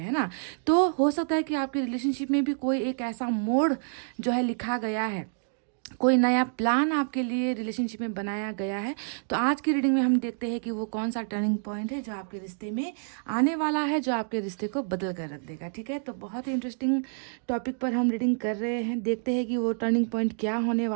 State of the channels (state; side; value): silent; left; digital silence